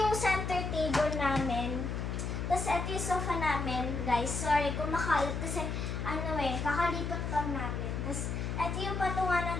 center table namin. Tapos, ito yung sofa namin, guys. Sorry kung makalat kasi, kakalipat lang namin. Tapos, ito yung patungan ng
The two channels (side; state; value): left; noise; hum, 3 dB below the sound